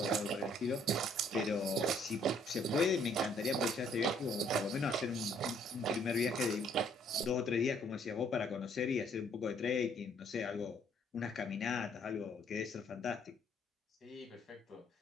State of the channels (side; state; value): both; normal; correlation 0.64